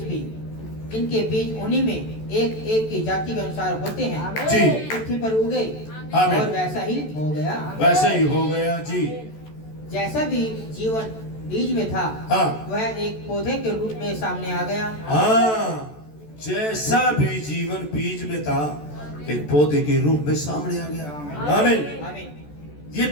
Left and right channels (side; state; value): right; late; 14 ms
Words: भी, इनके बीज उन्हीं में एक एक की जाति के अनुसार होते हैं, जी, पृथ्वी पर उगे। आमीन। और वैसा ही हो गया। वैसे ही हो गया। जी, जैसा भी जीवन बीज में था, हाँ, वह एक पौधे के रूप में सामने आ गया। हाँ, जैसा भी जीवन बीज में था एक पौधे के रूप में सामने आ गया। आमीन। आमीन। ये